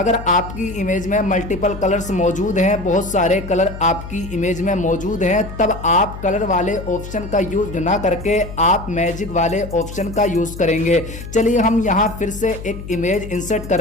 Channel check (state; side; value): noise; left; hum, 11 dB below the sound